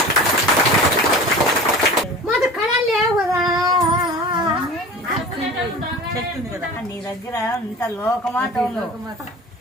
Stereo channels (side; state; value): both; normal; correlation 0.37